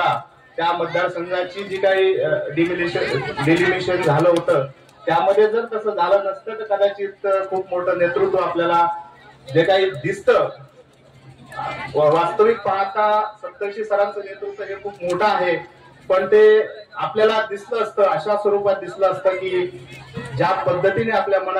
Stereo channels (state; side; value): identical; both; correlation 1.00